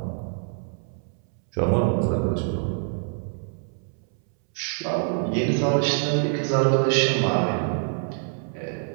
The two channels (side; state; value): left; silent; 61 dB below the other